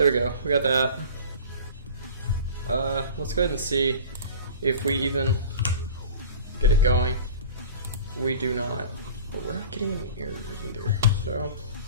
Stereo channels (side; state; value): both; inverted; correlation -0.40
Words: we go. We got that. Let's go ahead and see if we even get it going. We do not, but we're not getting any errors either. So